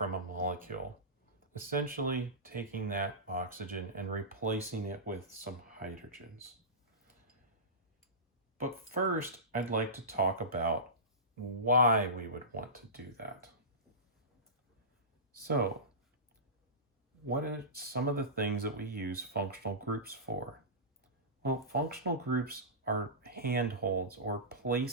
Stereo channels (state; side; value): normal; both; correlation -0.20